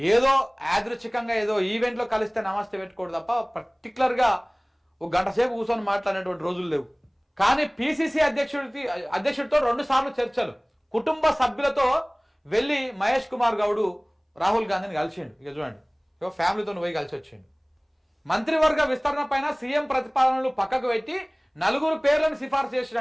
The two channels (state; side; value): identical; both; correlation 1.00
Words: యాదృచ్ఛికంగా ఏదో ఈవెంట్లో కలిస్తే నమస్తే పెట్టుకోడు తప్ప పర్టికులర్గా ఒక గంట సేపు కూర్చొని మాట్లాడినటువంటి రోజులు లేవు. కానీ పిసిసి అధ్యక్షుడితో 2 సార్లు చర్చలు, కుటుంబ సభ్యులతో వెళ్ళి మహేష్ కుమార్ గౌడ్ రాహుల్ గాంధీని కలిసిండు. ఇక చూడండి, ఇక ఫ్యామిలీతో పోయి కలిసి వచ్చిండు. మంత్రివర్గ విస్తరణ పైన సీఎం ప్రతిపాదనలు పక్కకు పెట్టి 4 పేర్లను సిఫార్సు